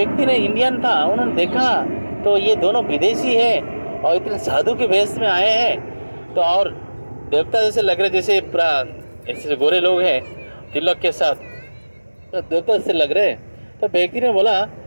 ने, इंडियन था, उन्होंने देखा तो ये दोनों विदेशी है और इतने साधु के वेश में आए हैं, तो और देवता जैसे लग रहे, जैसे पूरा ऐसे गोरे लोग हैं तिलक के साथ, तो देवता जैसे लग रहे। तो व्यक्ति ने बोला,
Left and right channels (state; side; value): inverted; both; correlation -1.00